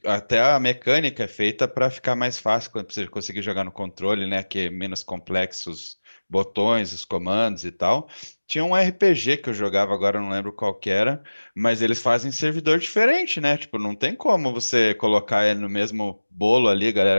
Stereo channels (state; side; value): inverted; both; correlation -1.00